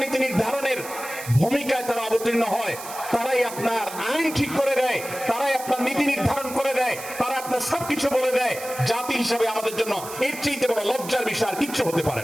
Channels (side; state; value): right; noise; hiss, 12 dB below the sound